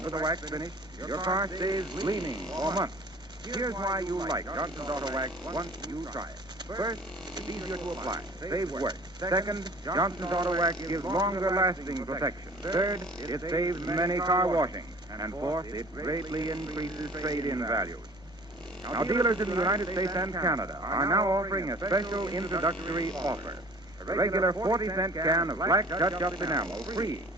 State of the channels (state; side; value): normal; both; correlation 0.48